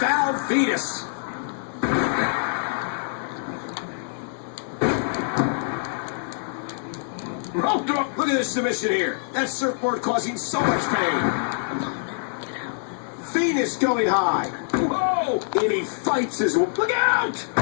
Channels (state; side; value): silent; right; digital silence